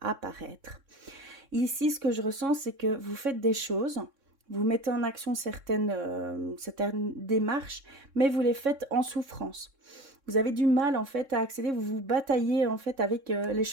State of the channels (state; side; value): late; left; 3.6 ms